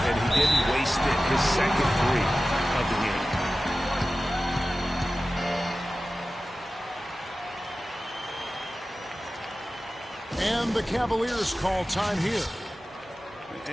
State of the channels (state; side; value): normal; both; correlation 0.95